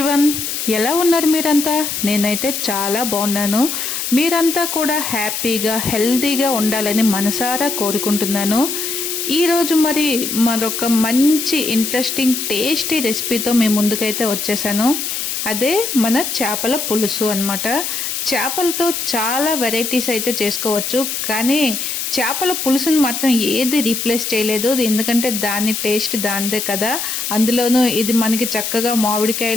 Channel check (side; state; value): left; noise; hiss, 3 dB below the sound